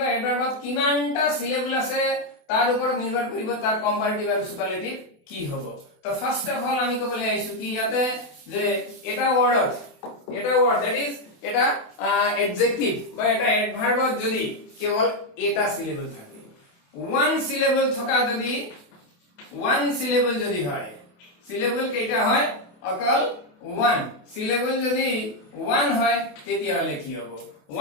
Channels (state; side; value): late; right; 28 ms